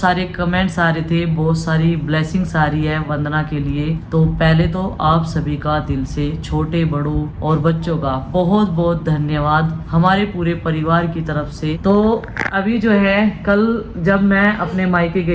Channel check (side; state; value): both; identical; correlation 1.00